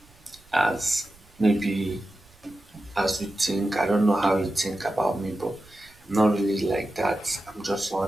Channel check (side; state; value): right; noise; rumble, 27 dB below the sound